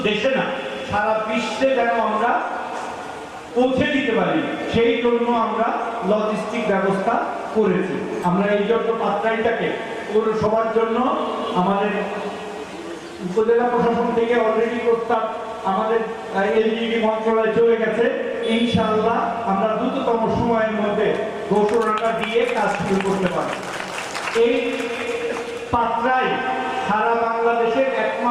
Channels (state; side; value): identical; both; correlation 1.00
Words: দেশে না সারা বিশ্বে যেন আমরা পৌঁছে দিতে পারি, সেই জন্য আমরা লজিস্টিক ব্যবস্থা করেছি। আমরা এই জন্য পাত্রাইটাকে পৌরসভার জন্য আমাদের উপজেলা প্রশাসন থেকে অলরেডি প্রস্তাব আমাদের এলজিডি মন্ত্রণালয়ে চলে গেছে। ইনশাআল্লাহ আমরা দ্রুততম সময়ের মধ্যে ঘোষণাটা দিয়ে কাজ শুরু করতে পারব। এই পাত্রাই সারা বাংলাদেশের